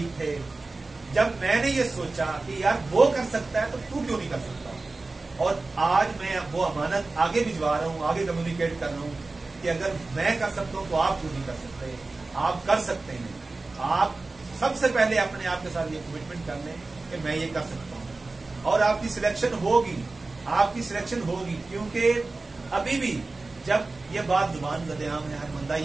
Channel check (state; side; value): quieter; left; 3.5 dB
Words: थे। जब मैंने ये सोचा कि यार वो कर सकता है तो तू क्यों नहीं कर सकता, और आज मैं वो अमानत आगे भिजवा रहा हूँ, आगे कम्युनिकेट कर रहा हूँ कि अगर मैं कर सकता हूँ तो आप क्यों नहीं कर सकते। आप कर सकते हैं। आप सबसे पहले अपने आप के साथ ये कमिटमेंट कर लें कि मैं ये कर सकता हूँ, और आपकी सिलेक्शन होगी, आपकी सिलेक्शन होगी। क्योंकि अभी भी जब ये बात जुबान ज़द-ए-आम है, हर बंदा